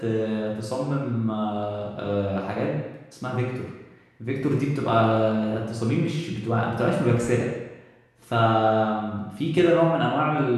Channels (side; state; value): both; identical; correlation 1.00